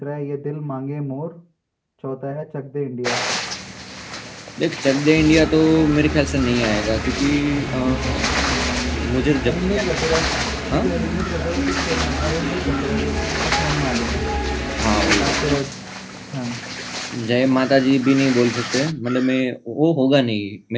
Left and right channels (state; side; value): identical; both; correlation 1.00